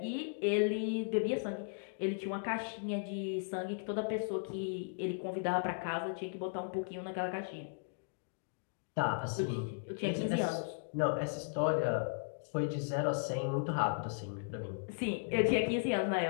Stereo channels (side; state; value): right; silent; digital silence